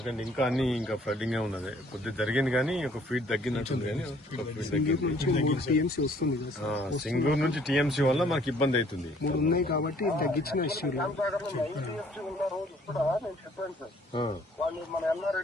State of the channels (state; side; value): normal; both; correlation 0.60